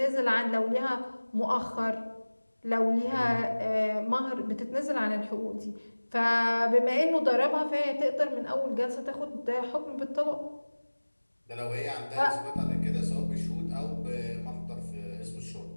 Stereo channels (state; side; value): inverted; both; correlation -1.00